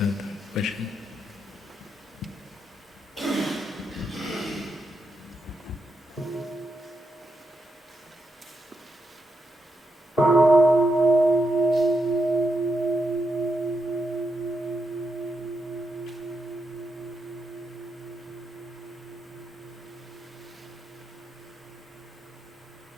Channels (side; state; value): both; normal; correlation 0.83